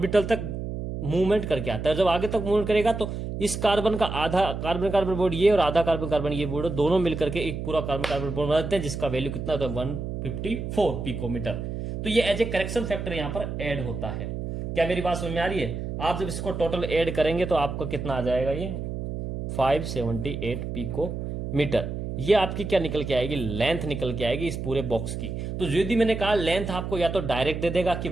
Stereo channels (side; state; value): right; noise; hum, 5 dB below the sound